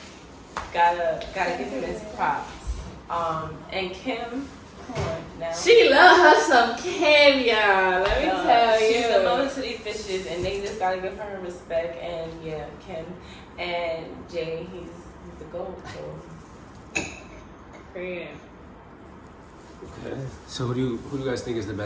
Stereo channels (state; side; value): identical; both; correlation 1.00